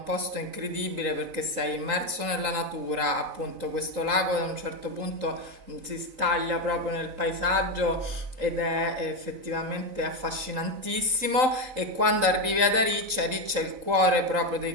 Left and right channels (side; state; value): left; late; 3.8 ms